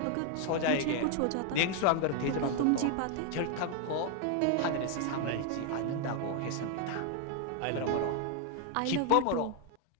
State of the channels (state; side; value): different; both; correlation 0.00